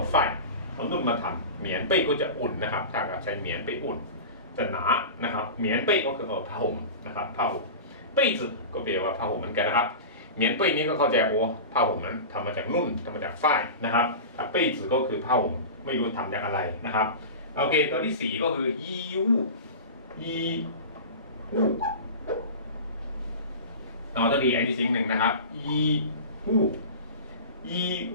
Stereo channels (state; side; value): inverted; both; correlation -0.30